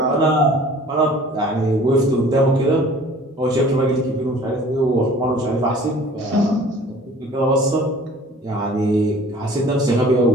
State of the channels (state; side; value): normal; both; correlation 0.49